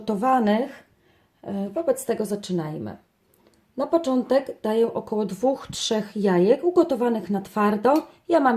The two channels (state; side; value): identical; both; correlation 1.00